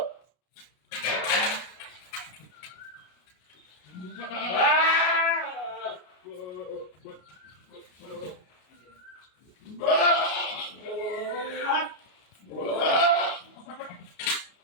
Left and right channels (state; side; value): late; right; 33 ms